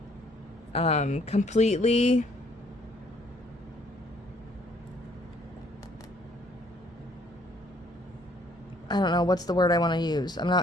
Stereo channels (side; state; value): both; normal; correlation 0.63